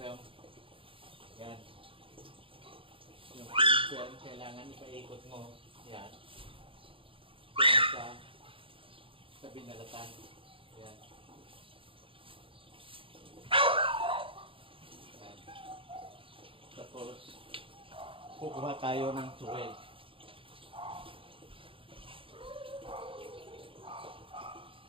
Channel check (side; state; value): left; late; 0.26 ms